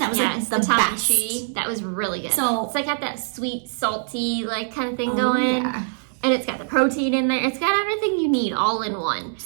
was the best. That was really good. So it's got that sweet, salty kind of thing going. Yeah. And it's got the protein in there. It's got everything you need all in one.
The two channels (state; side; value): silent; left; digital silence